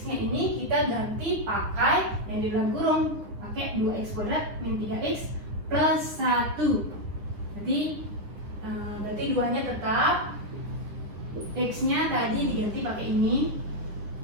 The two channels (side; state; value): left; late; 9.7 ms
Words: ini kita ganti pakai yang di dalam kurung, pakai 2x kuadrat min 3x plus 1. Berarti 2-nya tetap, x-nya tadi diganti pakai ini,